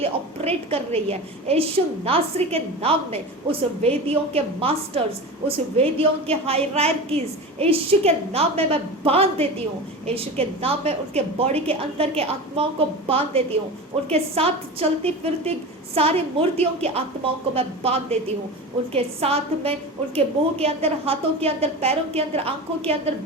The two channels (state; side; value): normal; both; correlation 0.29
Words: ऑपरेट कर रही है, यीशु नासरी के नाम में उस वेदियों के मास्टर्स, उस वेदियों के हायरार्कीज यीशु के नाम में मैं बांध देती हूँ। यीशु के नाम में उनके बॉडी के अंदर के आत्माओं को बांध देती हूँ। उनके साथ चलती फिरती सारी मूर्तियों की आत्माओं को मैं बांध देती हूँ। उनके साथ में उनके मुंह के अंदर, हाथों के अंदर, पैरों के अंदर, आंखों के अंदर,